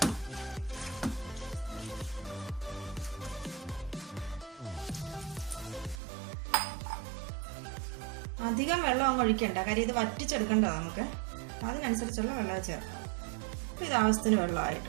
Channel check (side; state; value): left; drops out; at 6.0 s